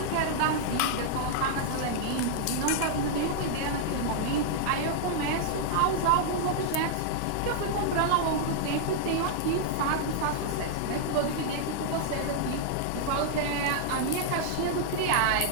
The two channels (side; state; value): both; different; correlation -0.01